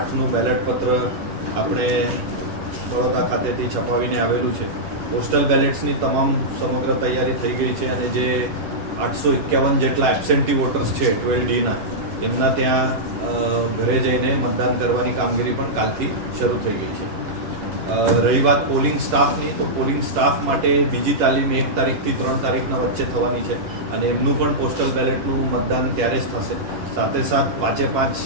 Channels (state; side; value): late; left; 10 ms